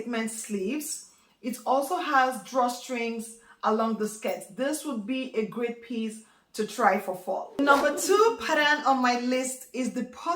sleeves. It also has drawstrings along the skirt. This would be a great piece to try for fall. Number two pattern on my list is the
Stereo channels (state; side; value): identical; both; correlation 1.00